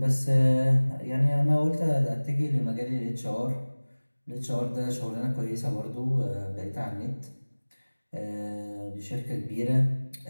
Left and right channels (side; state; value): both; inverted; correlation -1.00